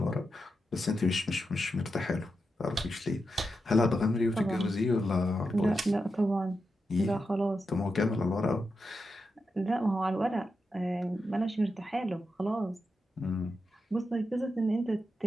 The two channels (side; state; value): both; normal; correlation 0.88